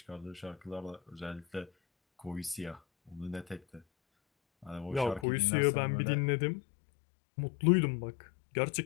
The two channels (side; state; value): right; drops out; at 5.2 s